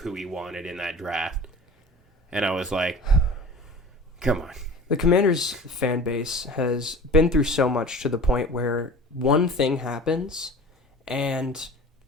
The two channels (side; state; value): both; normal; correlation 0.40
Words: he wanted in that draft. And I was like, come on. The Commanders fan base has been through so much to the point where one thing happens and